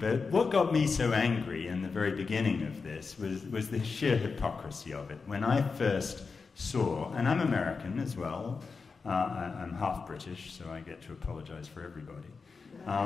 what got me so angry in the very beginning of this was the sheer hypocrisy of it. When I first saw, and I'm American as well, I'm half British, so I get to apologize for everybody.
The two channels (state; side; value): quieter; right; 4.8 dB